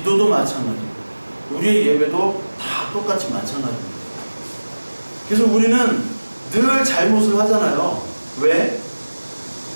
마찬가지, 우리의 예배도 다 똑같이 마찬가지입니다. 그래서 우리는 늘 잘못을 하잖아요. 왜?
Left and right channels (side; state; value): both; inverted; correlation -1.00